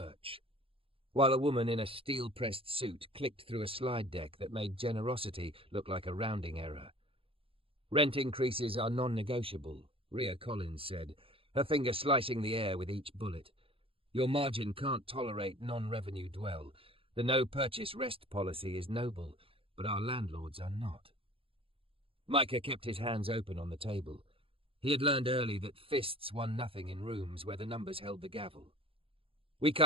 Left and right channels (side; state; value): left; late; 0.27 ms